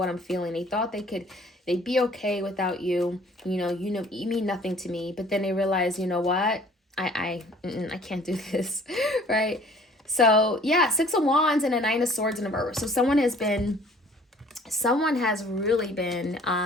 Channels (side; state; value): both; normal; correlation 0.54